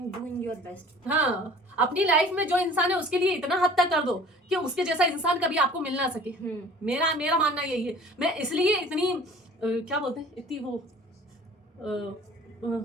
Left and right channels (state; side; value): normal; both; correlation 0.47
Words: डूइंग योर बेस्ट। हाँ, अपनी लाइफ में जो इंसान है उसके लिए इतना हद तक कर दो कि उसके जैसा इंसान कभी आपको मिल ना सके। मेरा मानना यही है। मैं इसलिए इतनी क्या बोलते हैं, इतनी वो